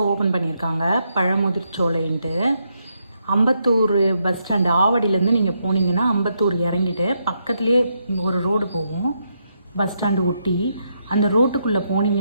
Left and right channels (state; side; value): inverted; both; correlation -0.80